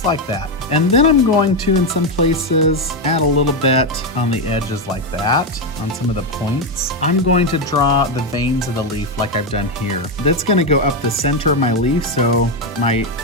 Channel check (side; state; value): both; normal; correlation 0.07